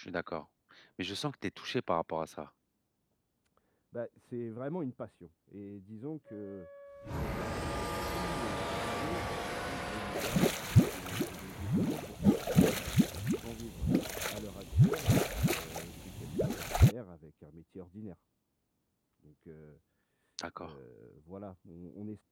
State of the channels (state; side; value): identical; both; correlation 1.00